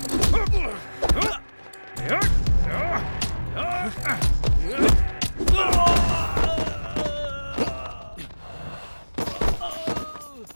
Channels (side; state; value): both; inverted; correlation -1.00